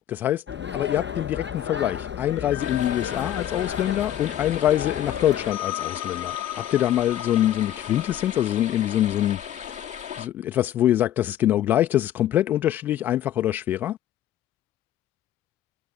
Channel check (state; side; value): quieter; right; 11.7 dB